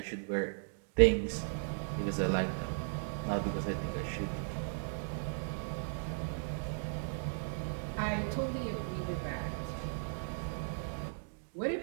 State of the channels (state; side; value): silent; left; digital silence